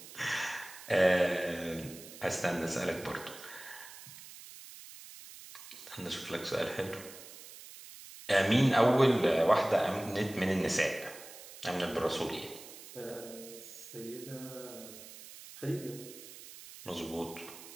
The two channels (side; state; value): right; noise; hiss, 16 dB below the sound